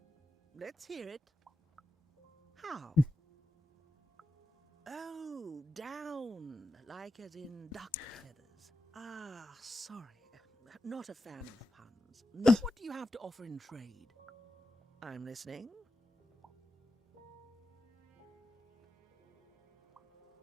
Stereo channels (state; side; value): normal; both; correlation 0.91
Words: Let's hear it. How? Oh, down. Like as in duck feathers. Ah, sorry. Not a fan of puns. No, what do you have to offer in trade? I'm listening.